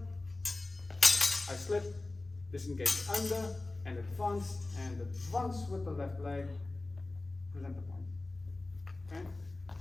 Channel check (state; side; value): quieter; right; 3.0 dB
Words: I slip, disengage under, and advance with the left leg, present the point. Okay,